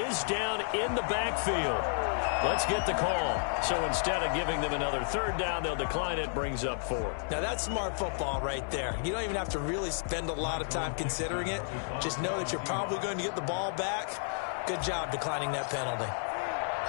down in the backfield. Let's get the call. So instead of giving them another 3rd down, they'll decline it, brings up 4. Now that's smart football right there. You don't even have to really spend a lot of time considering it. Just know that you're probably going to get the ball back. Good job declining that penalty.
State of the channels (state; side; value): silent; right; digital silence